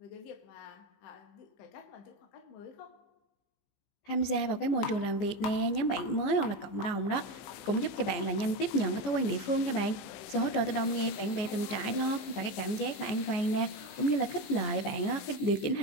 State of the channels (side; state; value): right; late; 14 ms